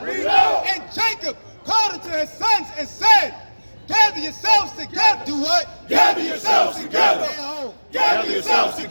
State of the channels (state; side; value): inverted; both; correlation -1.00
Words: And Jacob called unto his sons and said, gather yourselves together. Do what? Gather yourselves together. Stay at home. Gather yourselves